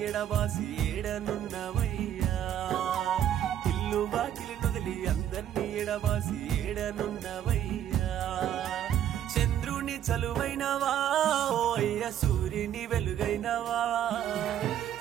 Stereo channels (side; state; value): left; quieter; 10.6 dB